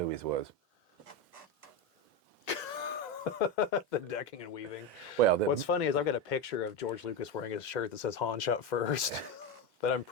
was. The decking and weaving. Well, what's funny is I've got a picture of George Lucas wearing a shirt that says Han shot first, that I'm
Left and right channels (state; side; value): normal; both; correlation 0.14